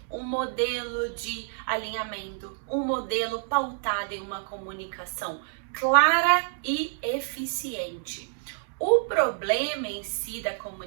um modelo de alinhamento, um modelo pautado em uma comunicação clara e eficiente. O problema em si da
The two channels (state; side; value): silent; left; digital silence